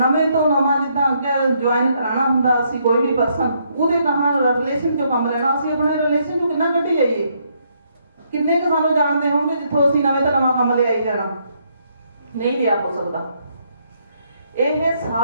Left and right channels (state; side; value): inverted; both; correlation -0.73